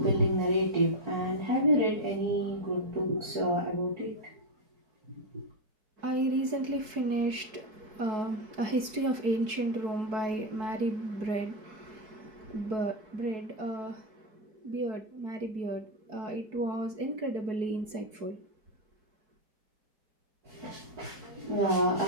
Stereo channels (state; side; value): late; left; 4.6 ms